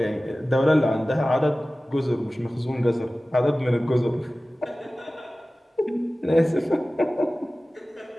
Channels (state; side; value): normal; both; correlation 0.97